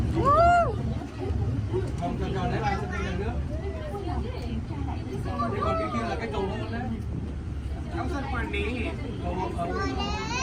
Không cho lấy lại cho tiền nữa. Thế còn cái kia là cái cầu nữa đấy. Không sân quan đi. Cầu ở.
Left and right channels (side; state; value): both; identical; correlation 1.00